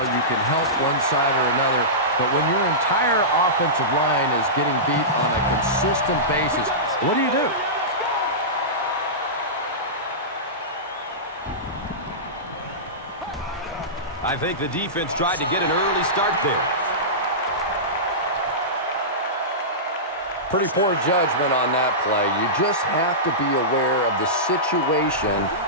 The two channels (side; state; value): both; normal; correlation -0.18